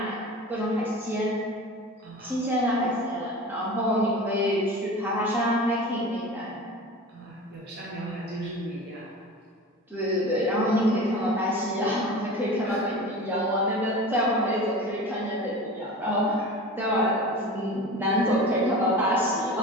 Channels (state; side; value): normal; both; correlation 0.34